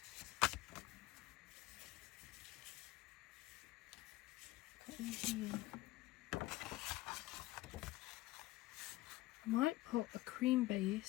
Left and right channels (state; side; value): quieter; right; 17.7 dB